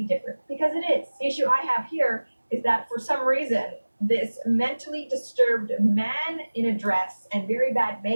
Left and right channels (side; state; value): both; inverted; correlation -1.00